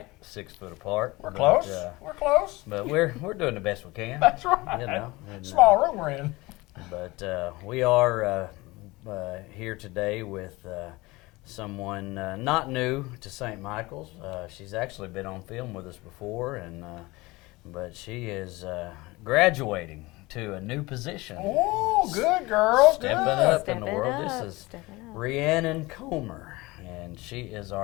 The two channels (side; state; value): right; quieter; 21.9 dB